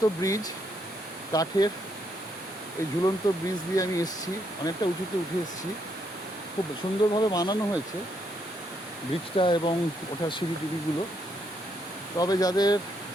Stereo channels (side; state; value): both; normal; correlation 0.75